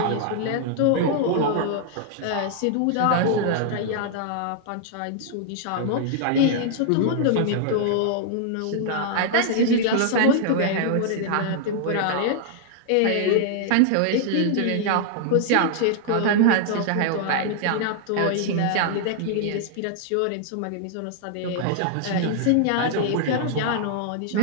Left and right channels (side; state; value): both; different; correlation -0.01